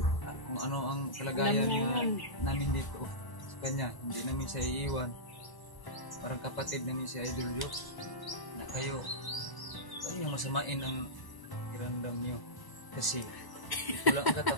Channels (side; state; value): right; late; 1.0 ms